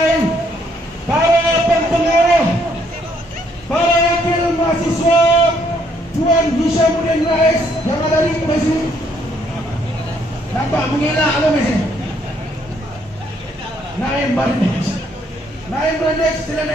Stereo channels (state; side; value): normal; both; correlation 0.69